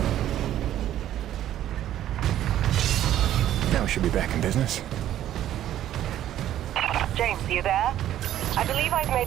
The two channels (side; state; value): left; quieter; 12.1 dB